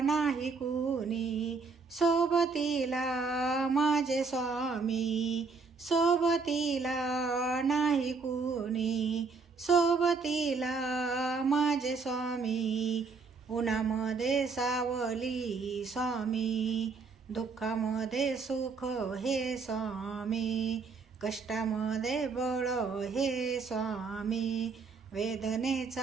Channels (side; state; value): left; quieter; 4.7 dB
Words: नाही कुणी, सोबतीला माझे स्वामी. सोबतीला नाही कुणी, सोबतीला माझे स्वामी. उन्हामध्ये सावली स्वामी, दुःखामध्ये सुख हे स्वामी. कष्टामध्ये बळ हे स्वामी,